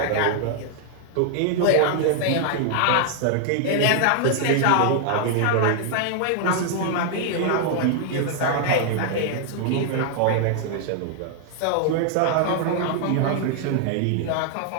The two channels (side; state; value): both; different; correlation 0.00